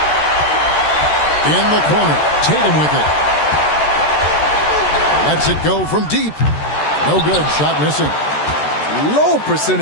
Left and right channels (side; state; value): right; late; 13 ms